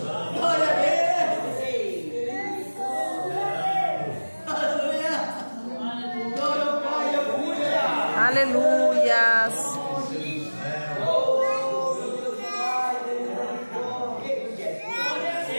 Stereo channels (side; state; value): both; inverted; correlation -1.00